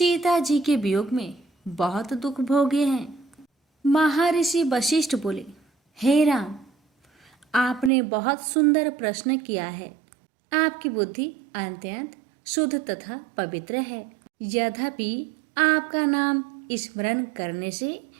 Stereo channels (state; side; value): drops out; left; at 7.9 s